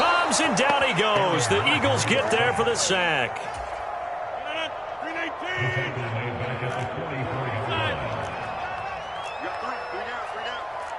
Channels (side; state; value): both; identical; correlation 1.00